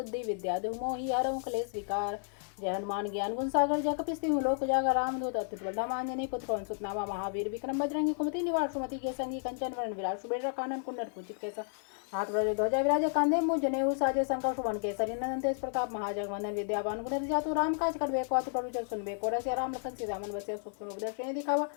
विद्या देहु मोहि हरहु क्लेश विकार। जय हनुमान ज्ञान गुण सागर जय कपीस तिहुँ लोक उजागर रामदूत अतुलित बल धाम अंजनी पुत्र पवन सुत नामा महावीर विक्रम बजरंगी कुमति निवार सुमति के संगी कंचन वरण विराट सुबेर कानन कुंडल कुचित केसा हाथ वज्र ध्वजा विराज कांधे मुझ जनेऊ साजे शंकर सुवन केसरी नंदन तेज प्रताप महाजगवंदन विद्यावान गुणति जातु राम काज करबे को अतुल प्रभु सुनबे को रसिया राम लखन सीता मन बसिया सुख रूप दर्शन दिखावा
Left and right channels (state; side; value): silent; right; digital silence